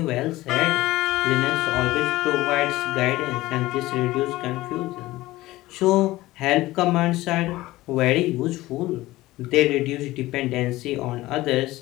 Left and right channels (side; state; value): right; quieter; 17.8 dB